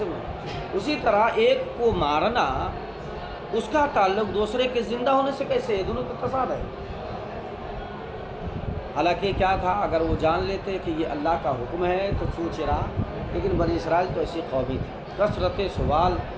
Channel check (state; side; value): identical; both; correlation 1.00